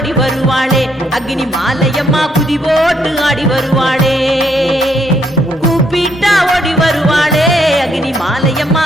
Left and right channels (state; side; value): normal; both; correlation 0.73